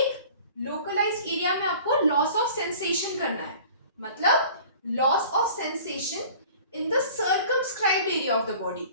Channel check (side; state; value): both; inverted; correlation -0.46